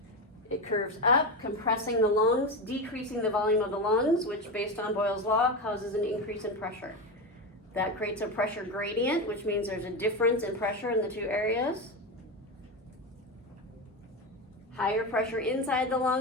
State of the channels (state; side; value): normal; both; correlation 0.17